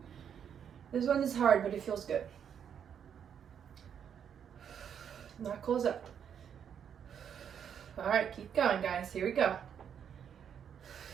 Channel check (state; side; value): quieter; left; 8.2 dB